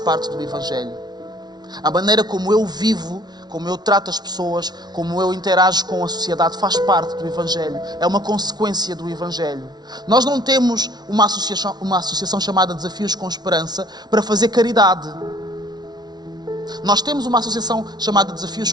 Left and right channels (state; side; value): late; left; 0.19 ms